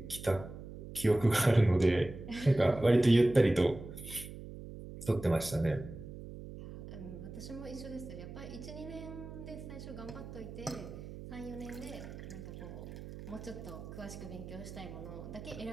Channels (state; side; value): noise; right; hum, 12 dB below the sound